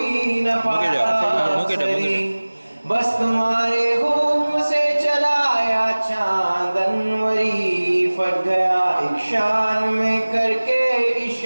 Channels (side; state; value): both; inverted; correlation -1.00